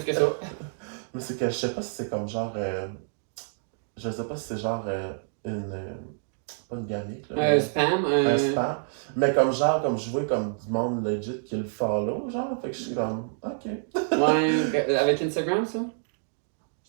que ça. Mais c'est que je sais pas si c'est comme genre. Je sais pas si c'est genre une. Pas une gamique. Là, un spam. Un spam. Mais comme genre, comme je vois comme du monde legit qui le follow, genre. Fait que je suis comme, ok. Ouais, avec Instagram, ça?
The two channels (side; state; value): left; silent; digital silence